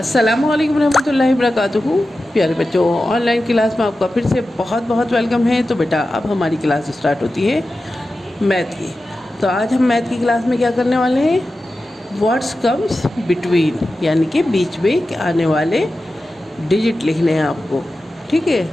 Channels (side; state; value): both; normal; correlation 0.93